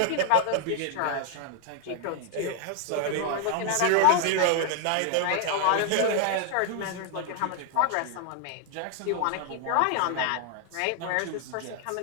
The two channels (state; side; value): different; both; correlation 0.00